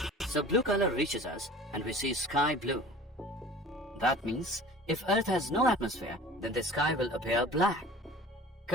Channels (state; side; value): normal; both; correlation 0.43